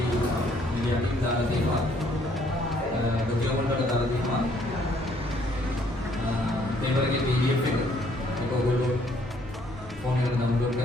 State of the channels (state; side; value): normal; both; correlation 0.65